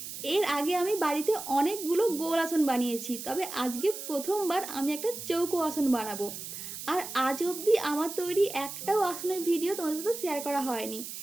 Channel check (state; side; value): noise; right; hiss, 9 dB below the sound